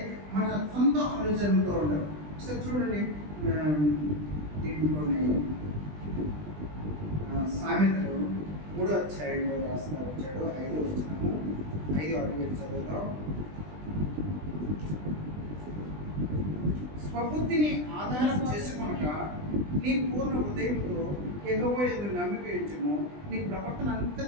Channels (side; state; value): left; late; 20 ms